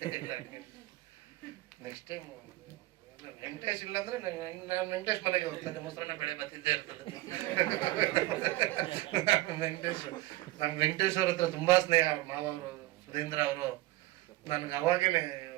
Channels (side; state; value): left; quieter; 18.0 dB